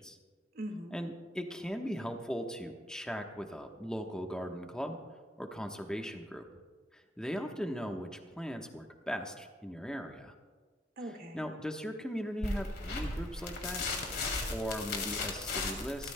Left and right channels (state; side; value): normal; both; correlation 0.69